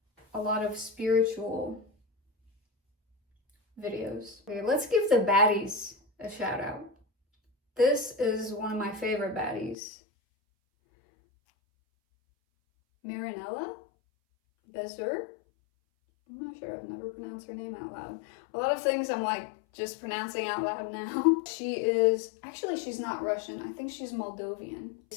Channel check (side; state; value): right; drops out; at 9.8 s